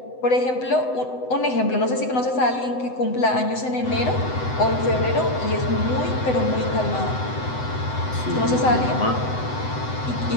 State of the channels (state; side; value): late; right; 7.9 ms